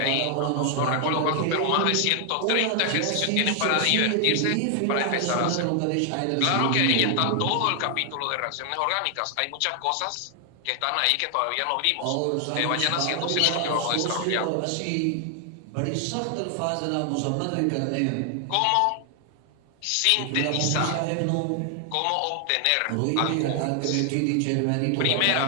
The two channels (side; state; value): both; different; correlation 0.00